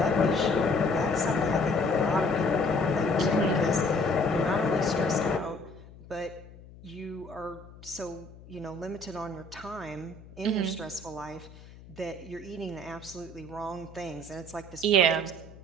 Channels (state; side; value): noise; left; hum, 19 dB below the sound